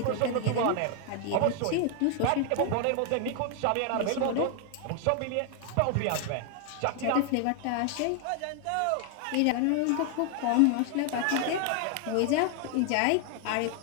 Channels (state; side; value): different; both; correlation 0.00